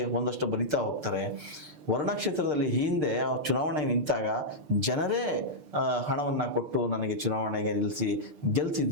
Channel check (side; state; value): left; late; 6.7 ms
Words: ಒಂದಷ್ಟು ಬರಿತಾ ಹೋಗ್ತಾರೆ. ವರ್ಣಾ ಕ್ಷೇತ್ರದಲ್ಲಿ ಹಿಂದೆ ಚುನಾವಣೆಗೆ ನಿಂತಾಗ ಜನರೇ ಹಣವನ್ನು ಕೊಟ್ಟು ನನಗೆ ಚುನಾವಣೆಗೆ ನಿಲ್ಲಿಸಿ